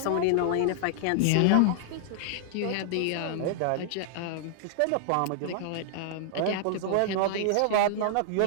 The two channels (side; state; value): both; different; correlation -0.01